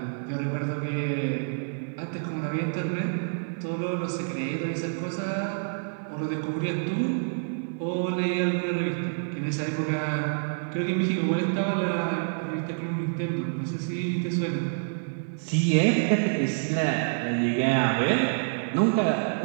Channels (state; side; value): silent; left; digital silence